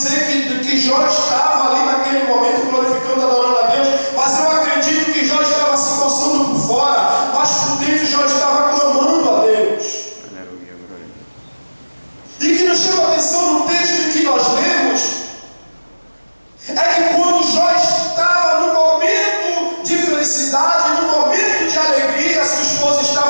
que Jó estava ali naquele momento glorificando, adorando a Deus, mas eu acredito que Jó estava se coçando por fora, mas por dentro Jó estava clamando a Deus. E que nos chama a atenção no texto em que nós lemos, é que quando Jó estava no momento de felicidade, no momento de alegria, sua esposa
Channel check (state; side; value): inverted; both; correlation -1.00